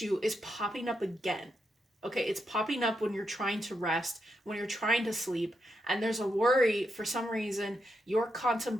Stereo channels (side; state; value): both; normal; correlation 0.83